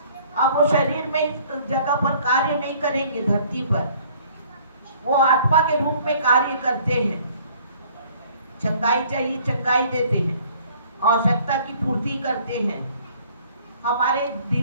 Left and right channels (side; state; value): both; inverted; correlation -0.56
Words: अब वो शरीर में इस जगह पर कार्य नहीं करेंगे धरती पर, वो आत्मा के रूप में कार्य करते हैं। चंगाई चाहिए, चंगाई देते हैं, आवश्यकता की पूर्ति करते हैं, हमारे